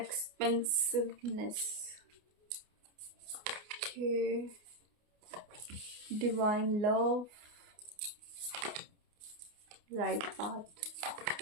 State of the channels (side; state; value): left; late; 29 ms